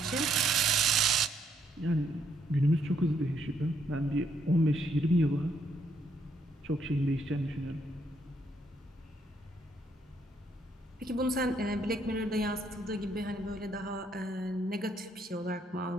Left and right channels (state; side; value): normal; both; correlation 0.72